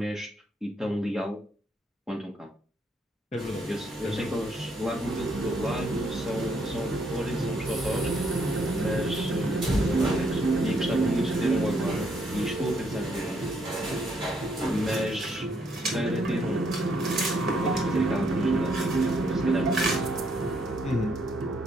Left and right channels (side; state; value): both; normal; correlation 0.72